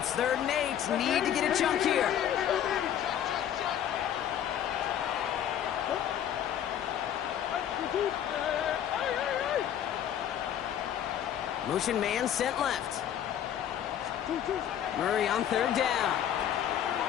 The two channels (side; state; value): right; quieter; 10.1 dB